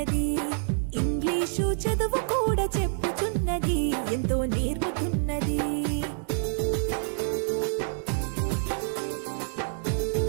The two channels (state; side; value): silent; left; digital silence